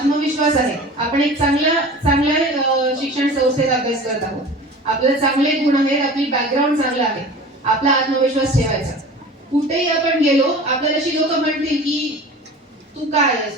आहे, आपण एक चांगल्या शिक्षण संस्थेत अभ्यास करत आहोत, आपले चांगले गुण आहेत, आपली बॅकग्राऊंड चांगलं आहे, आपला आत्मविश्वास ठेवायचा. कुठेही आपण गेलो, आपल्याला अशी लोक म्हणतील की तू काय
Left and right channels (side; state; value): both; normal; correlation 0.39